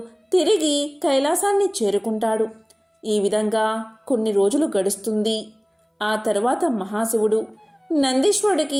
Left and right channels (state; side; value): identical; both; correlation 1.00